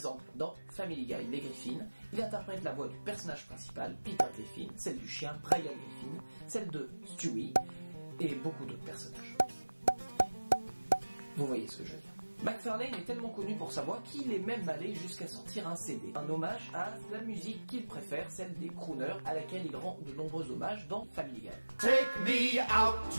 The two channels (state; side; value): inverted; both; correlation -1.00